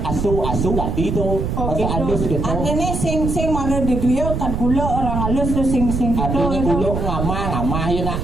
asu tadi tuh oh bahasa halus gitu gitu. artinya sing mana di griot kan gula orang halus tuh sing gitu Artinya gitu. kuluk ngamah ya nak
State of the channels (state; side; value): noise; right; rumble, 2 dB below the sound